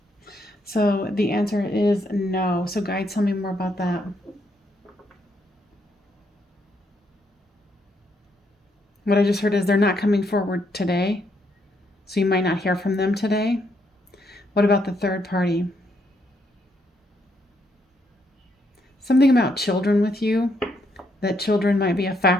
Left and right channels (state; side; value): normal; both; correlation 0.75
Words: So the answer is no. So guides, tell me more about that. What I just heard is they're not coming forward today, so you might not hear from them today. What about the third party? Something about children with you, that children might be a